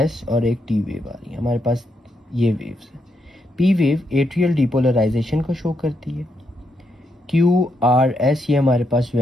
और एक T वेव आ रही है। हमारे पास ये वेव्स है। P वेव एट्रियल डिपोलराइजेशन को शो करती है। Q, R, S ये हमारे पास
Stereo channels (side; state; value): both; normal; correlation 0.80